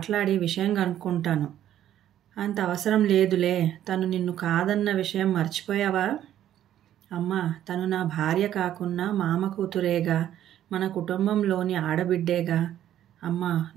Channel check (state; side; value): quieter; left; 11.5 dB